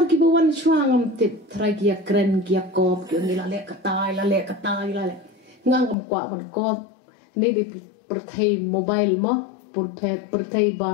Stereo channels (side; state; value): right; drops out; at 6.0 s